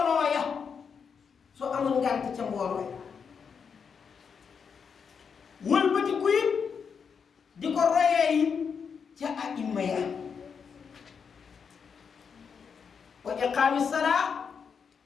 ya soo amul ngant ca mbooloo ya wëlbati ku it di ko royee yi ca aimma ya wa iqaami salaa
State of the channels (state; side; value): quieter; right; 6.3 dB